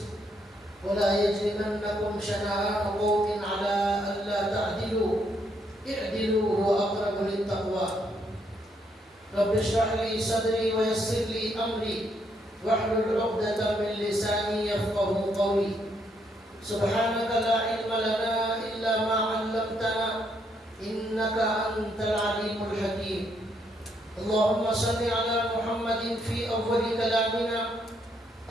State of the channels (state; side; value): normal; both; correlation 0.74